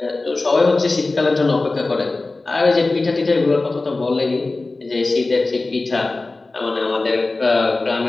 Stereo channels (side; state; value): right; quieter; 3.3 dB